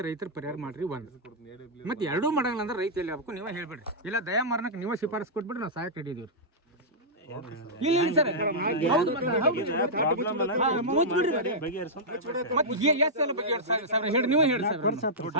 ರೈತರ ಪರಿಹಾರ ಮಾಡ್ರಿ ಒಂದು. ಮತ್ತೆ ಎರಡೂ ಮಾಡಂಗಿಲ್ಲ ಅಂದ್ರೆ ರೈತ ಎಲ್ಲಿ ಆಗ್ಬೇಕು ನೀವೇ ಹೇಳ್ಬೇಡ್ರಿ, ಇಲ್ಲ ದಯಾ ಮಾರನಕ್ಕೆ ನೀವೇ ಶಿಫಾರಸ್ ಕೊಟ್ಬಿಡ್ರಿ, ನಾವು ಸಹಾಯಕ್ಕೆ ಹಿಡಿದೀವಿ. ಇಲ್ಲ ಸರ್ ನೀವು ಹೇಳಿ ಸರ್.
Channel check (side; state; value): both; normal; correlation -0.12